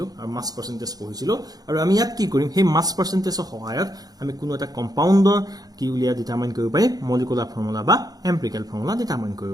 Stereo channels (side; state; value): left; late; 0.19 ms